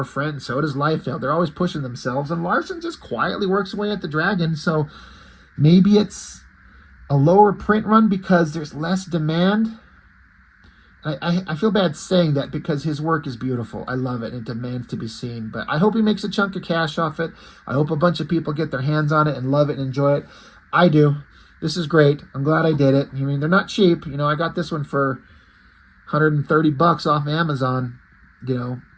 and so does Liefeld. They're always pushing themselves, and Larsen just quietly works away at the Dragon, so maybe it's a lower print run because there's less demand. I feel bad saying that because his work is beautiful. I love it, and it demands to be seen. But I hope he makes a chunk of cash off it. I hope a bunch of people get their hands on it and love it and enjoy it. I do. This is great. I'm glad I did it. I mean, they're not cheap. You know, I got this one for $130 off Amazon. You know,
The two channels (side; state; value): both; identical; correlation 1.00